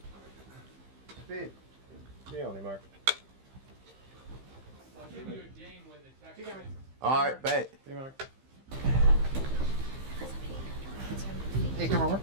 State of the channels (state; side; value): late; left; 15 ms